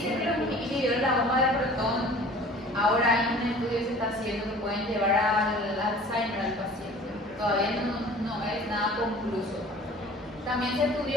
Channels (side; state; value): both; normal; correlation 0.46